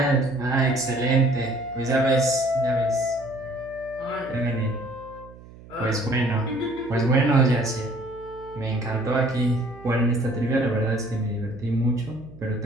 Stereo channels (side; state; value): right; noise; hum, 19 dB below the sound